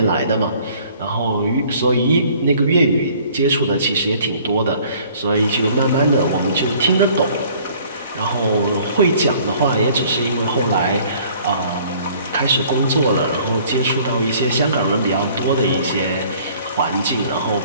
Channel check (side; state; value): both; inverted; correlation -0.55